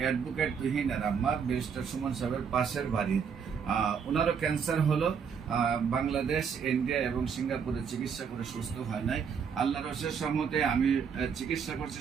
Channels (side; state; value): left; quieter; 6.7 dB